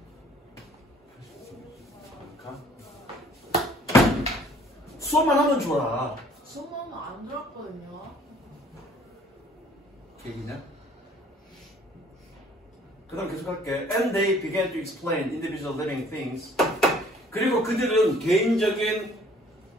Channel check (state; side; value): normal; both; correlation 0.56